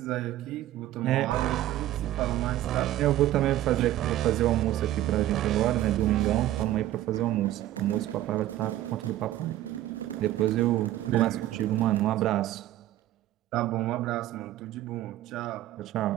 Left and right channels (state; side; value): quieter; left; 14.0 dB